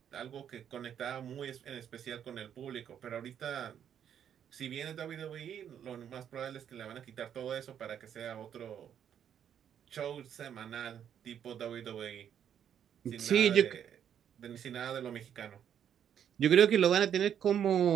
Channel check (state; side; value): quieter; left; 9.1 dB